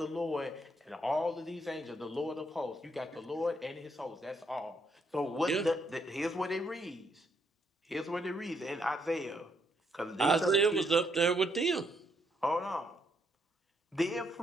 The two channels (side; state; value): both; normal; correlation 0.74